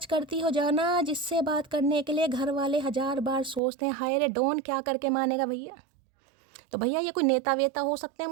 करती हो जाना जिससे बात करने के लिए घर वाले 1000 बार सोचते हैं। हाय रे डॉन, क्या करके मानेगा भैया, तो भैया ये कोई नेता वेता हो सकते हैं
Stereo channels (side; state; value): left; drops out; at 3.6 s